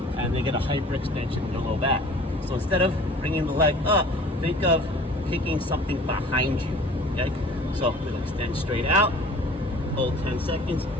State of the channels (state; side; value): normal; both; correlation 0.47